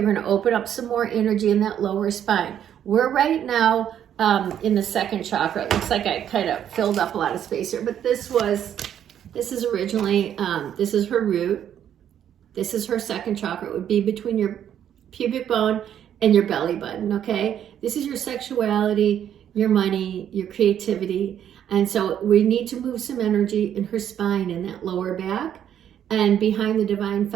going to open up some more energy in that lower spine. We're right now in the second chakra. It looks like I kind of filled up a lot of space here, but this is originally, this is her root. This is her second chakra. It would be between your pubic bone and your belly button, okay? This is your sexuality, your money, your creativity. And so we need to move some energy in her spine, in that lower back, and behind the divine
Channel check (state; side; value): quieter; left; 9.8 dB